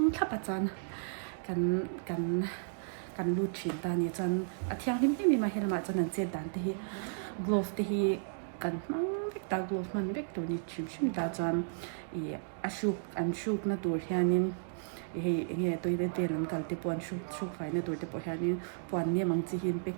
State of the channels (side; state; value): left; silent; digital silence